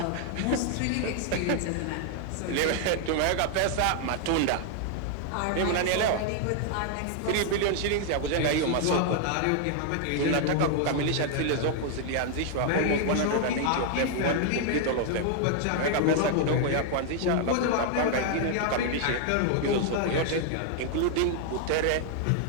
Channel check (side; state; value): both; different; correlation 0.00